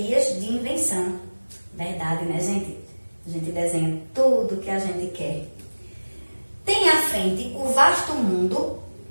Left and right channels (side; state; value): both; inverted; correlation -1.00